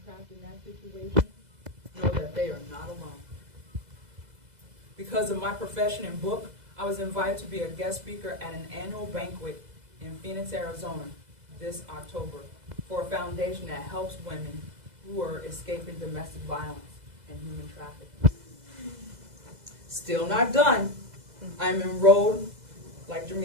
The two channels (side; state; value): left; late; 2.0 ms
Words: trapped in that situation know that they are not alone. Because of my profession and book, I was invited to be a guest speaker at an annual banquet in Phoenix, Arizona this October for a foundation that helps women who are escaping domestic violence and human trafficking. Still not done. I'm enrolled, like